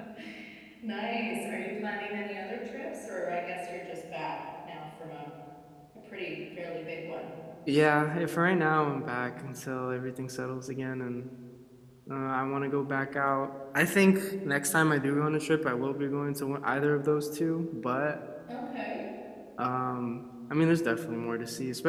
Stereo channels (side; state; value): both; identical; correlation 1.00